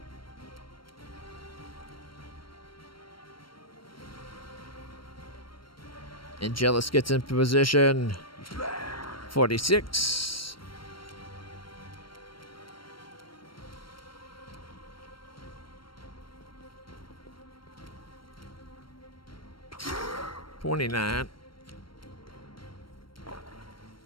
Angelus gets into position. 46. $29.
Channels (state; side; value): late; right; 0.73 ms